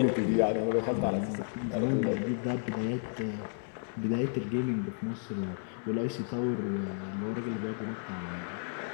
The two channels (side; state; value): right; silent; digital silence